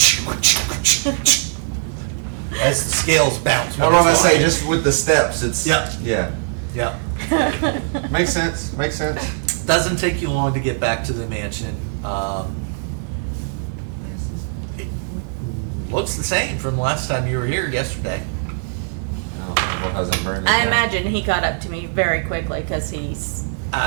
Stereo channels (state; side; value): silent; left; digital silence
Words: as the scales bounce. I don't want to say just with the steps. It's Yeah. yeah. Yeah. Makes sense. Makes sense. Doesn't take you long to get back to the mansion. It looks the same from the last time you were here yesterday. Oh, what hasn't burned? I imagine he got up to me very quickly because he's